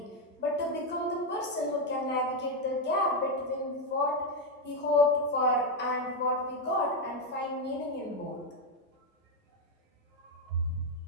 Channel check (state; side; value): normal; both; correlation 0.04